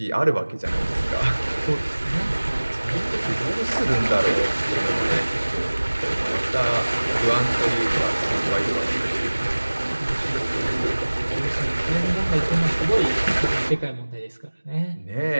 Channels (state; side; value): inverted; both; correlation -1.00